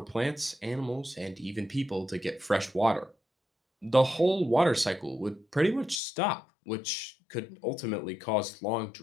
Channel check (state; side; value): drops out; right; at 6.0 s